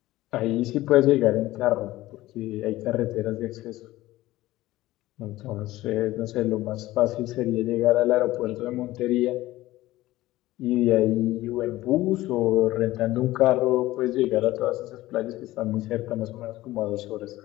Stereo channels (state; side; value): quieter; right; 16.9 dB